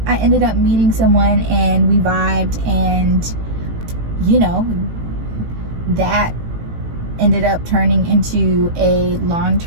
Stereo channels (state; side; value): late; left; 18 ms